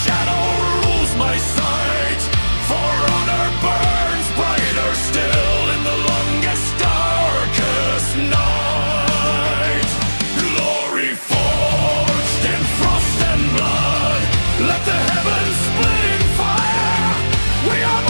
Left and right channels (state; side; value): inverted; both; correlation -1.00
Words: shadow rules my sight. For honor burns brighter still in the longest, darkest night. Glory forged in frost and blood, let the heavens split in fire. We are